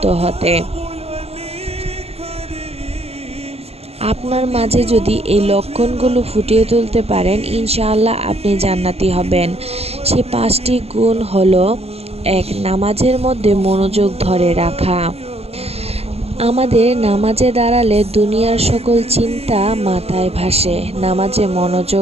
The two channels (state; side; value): late; left; 0.29 ms